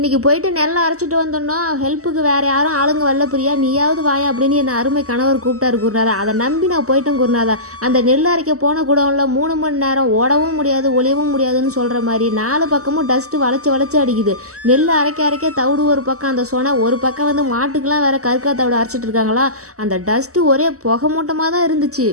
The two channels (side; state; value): left; late; 0.66 ms